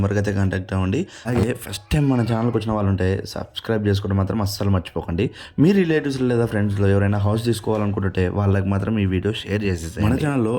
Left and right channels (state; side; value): identical; both; correlation 1.00